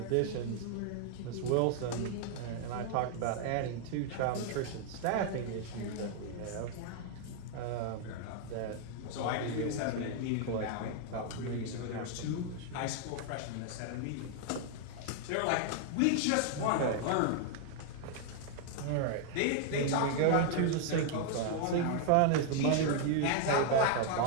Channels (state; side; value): different; both; correlation 0.00